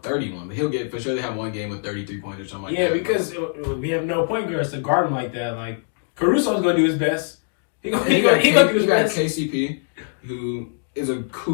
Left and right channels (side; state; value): right; silent; digital silence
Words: but he'll get for sure. They have one game with 33 points or something like that. Yeah, because we have no point guards to guard him like that. Like, Caruso's going to do his best. He got KCP, who is a